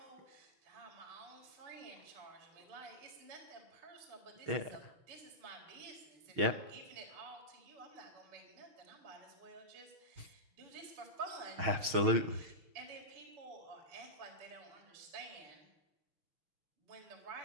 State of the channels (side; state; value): left; late; 6.4 ms